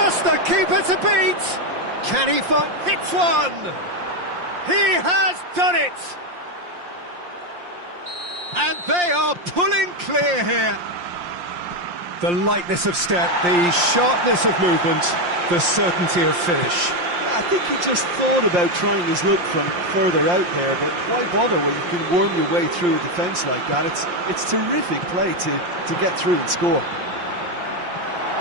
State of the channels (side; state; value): left; late; 5.7 ms